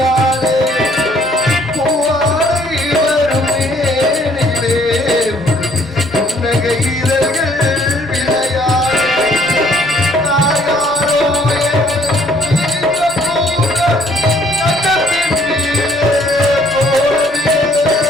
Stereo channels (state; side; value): normal; both; correlation 0.63